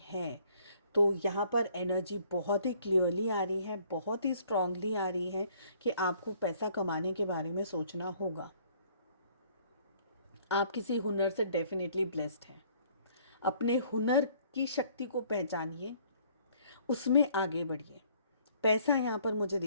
है, तो यहाँ पर एनर्जी बहुत ही क्लियरली आ रही है, बहुत ही स्ट्रांगली आ रही है कि आपको पैसा कमाने के बारे में सोचना होगा। आप किसी हुनर से डेफिनेटली ब्लेस्ड हैं। अपने हुनर की शक्ति को पहचानिए, उसमें आगे बढ़िए। पैसा यहाँ पर मुझे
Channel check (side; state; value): both; inverted; correlation -0.60